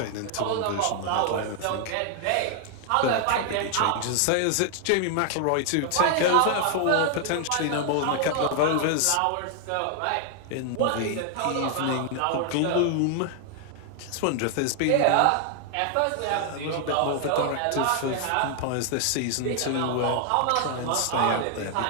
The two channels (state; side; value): different; both; correlation 0.00